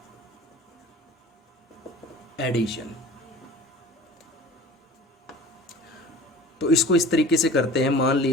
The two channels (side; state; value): both; normal; correlation 0.41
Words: addition. तो इसको इस तरीके से करते हैं, मान